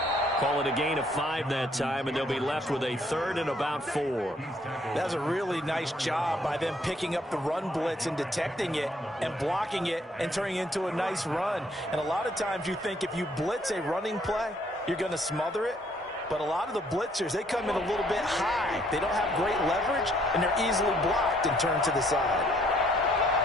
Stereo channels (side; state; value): both; normal; correlation 0.66